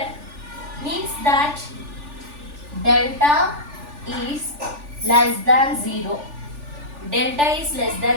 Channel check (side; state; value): left; late; 3.4 ms